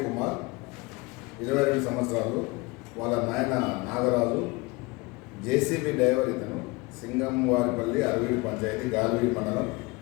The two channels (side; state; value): right; quieter; 24.9 dB